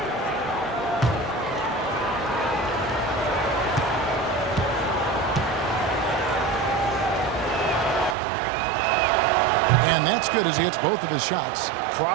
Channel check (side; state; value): left; drops out; at 8.2 s